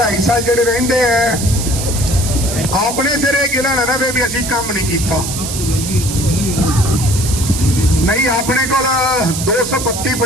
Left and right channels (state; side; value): noise; right; hiss, 6 dB below the sound